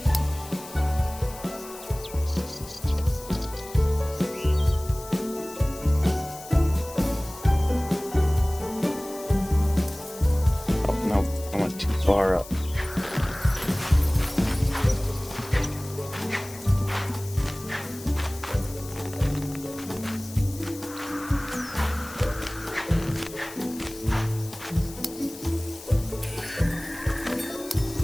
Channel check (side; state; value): left; noise; hiss, 16 dB below the sound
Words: Oh no, I went too far up.